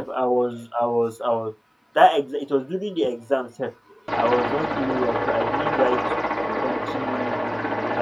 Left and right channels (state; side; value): identical; both; correlation 1.00